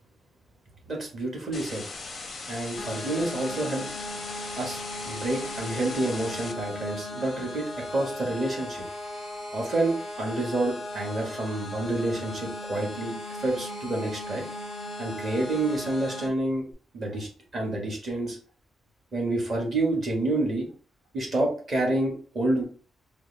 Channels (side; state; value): both; normal; correlation 0.77